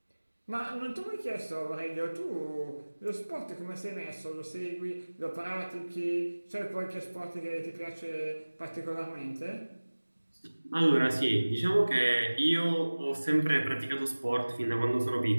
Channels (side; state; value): both; inverted; correlation -1.00